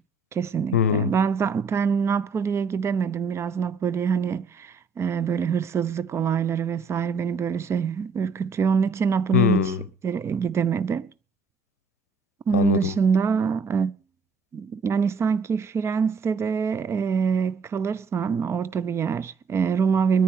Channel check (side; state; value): left; quieter; 4.1 dB